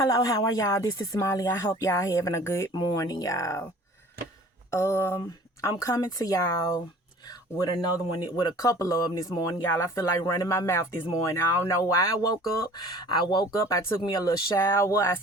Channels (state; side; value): normal; both; correlation 0.47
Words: how are y'all? This is Molly. I hope y'all having a good morning, y'all. I'm coming to y'all with another one, with a couple of them this morning, y'all. I feel like running my mouth this morning. I don't know why I woke up. I took me a little shower. I